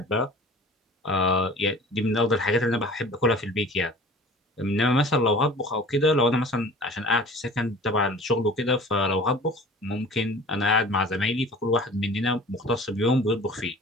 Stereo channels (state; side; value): normal; both; correlation 0.44